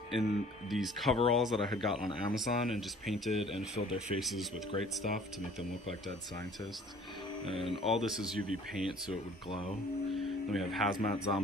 in these coveralls that I had got on Amazon and just painted and filled their faces with great stuff to make them look like dead scientists. And all this is UV paint so it would glow. Then we have Hazmat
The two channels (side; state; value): both; normal; correlation 0.51